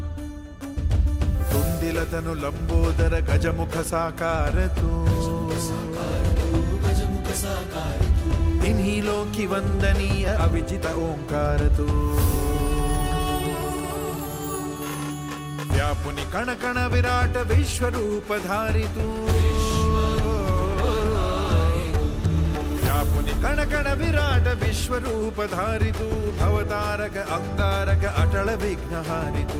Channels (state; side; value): identical; both; correlation 1.00